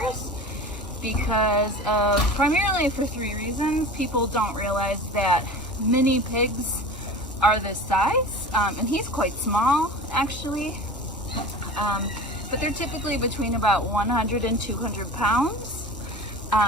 because of, primarily for 3 reasons. People don't realize that mini pigs are this size, and he's quite small actually, but they're typically between about 100 and 200 pounds.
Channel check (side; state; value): both; normal; correlation 0.36